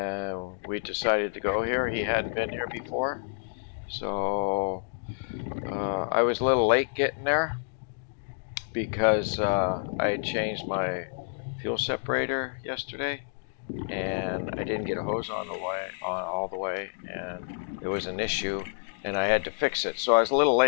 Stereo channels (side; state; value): right; silent; digital silence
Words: we decided to go here. He hadn't been here before, so I was a little late getting there because I had changed my fuel separator yesterday, and I didn't get a hose on all the way, and it was an issue, and I had to fix it. So I was a little